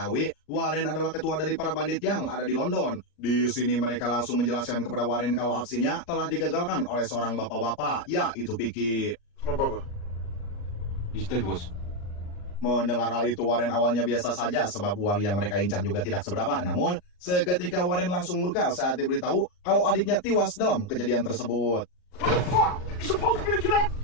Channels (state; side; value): late; right; 39 ms